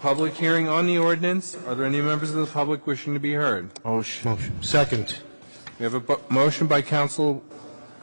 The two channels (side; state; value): both; inverted; correlation -1.00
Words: hearing on the ordinance, are there any members of the public wishing to be heard? Motion. Second. We have a motion by Councilman